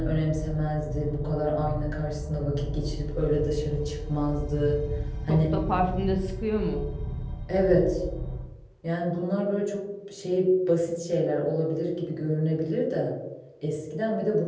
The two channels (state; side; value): identical; both; correlation 1.00